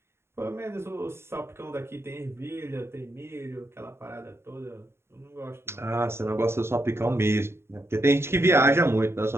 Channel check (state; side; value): late; left; 0.12 ms